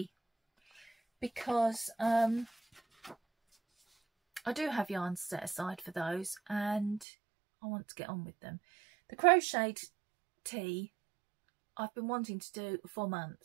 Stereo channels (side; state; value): left; drops out; at 7.1 s